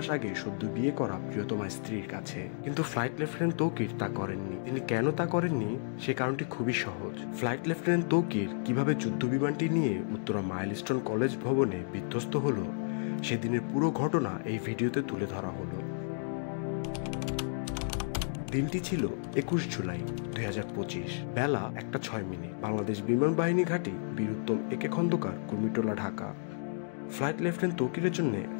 আগে সদ্য বিয়ে করা প্রিয়তমা স্ত্রীর কাছে। কিন্তু ফ্লাইট লেফটেন্যান্ট তৌকির তা করেননি। তিনি কেন তা করেননি সে কারণটি খুবই সহজ। ফ্লাইট লেফটেন্যান্ট তৌকির কিভাবে যুদ্ধ বিমানটি নিয়ে উত্তরা মাইলস্টোন কলেজ ভবনে বিধ্বস্ত হলো, সেদিনের পুরো ঘটনা এই ভিডিওতে তুলে ধরা হলো। দিনটি ছিল 21 জুলাই 2025, বেলা 1:06। বাংলাদেশ বিমান বাহিনী ঘাঁটি বীর উত্তম একে খন্দকার, কুর্মিটোলা, ঢাকা। ফ্লাইট লেফটেন্যান্ট তৌকিরের জন্য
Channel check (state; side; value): silent; right; digital silence